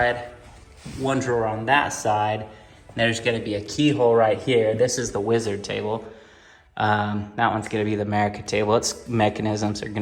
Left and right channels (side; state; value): both; identical; correlation 1.00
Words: 1 drawer on that side. There's gonna be a keyhole right here. This is the wizard table. That one's gonna be the America table. Its mechanisms are